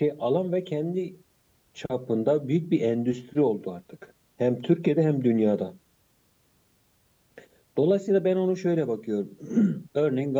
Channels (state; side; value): identical; both; correlation 1.00